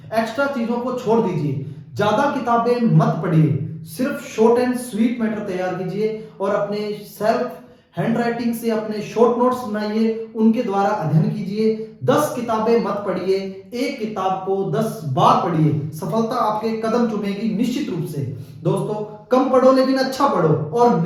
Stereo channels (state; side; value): identical; both; correlation 1.00